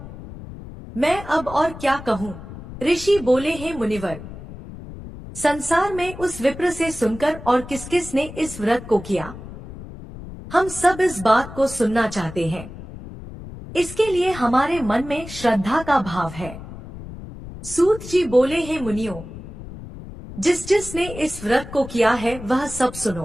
मैं अब और क्या कहूँ। ऋषि बोले, हे मुनिवर, संसार में उस विप्र से सुनकर और किस किस ने इस व्रत को किया, हम सब इस बात को सुनना चाहते हैं। इसके लिए हमारे मन में श्रद्धा का भाव है। सूत जी बोले, हे मुनियों, जिस जिसने इस व्रत को किया है वह सब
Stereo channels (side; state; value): left; noise; rumble, 13 dB below the sound